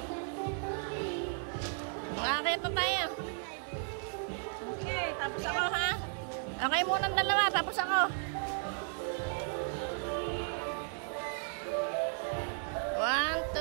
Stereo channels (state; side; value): silent; left; 55 dB below the other